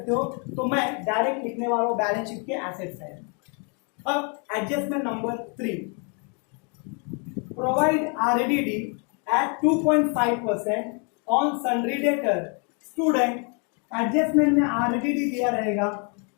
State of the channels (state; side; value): quieter; right; 36.8 dB